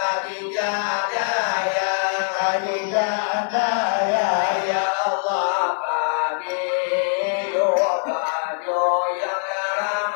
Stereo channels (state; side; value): silent; right; 64 dB below the other